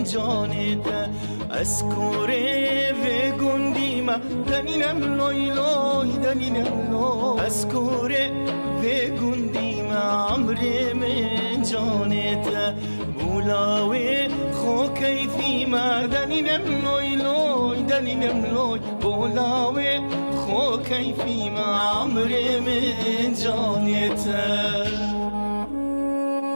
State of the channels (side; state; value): both; inverted; correlation -1.00